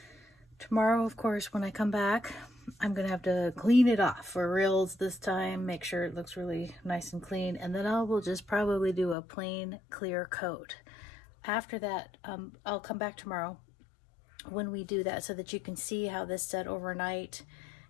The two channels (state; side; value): drops out; right; at 9.2 s